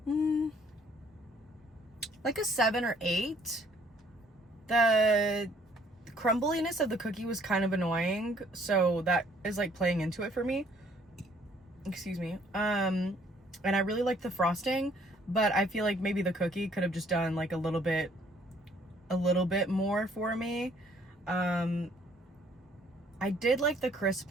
like a 7 or 8. The crumbliness of the cookie was kind of annoying, so that is like playing into it for me. Excuse me. And I really like the frosting, but I feel like maybe the cookie could have just done like a little bit more for me. I did like the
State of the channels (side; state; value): both; normal; correlation 0.62